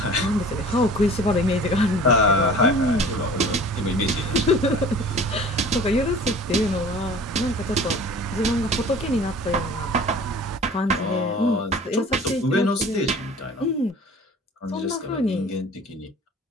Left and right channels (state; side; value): normal; both; correlation 0.44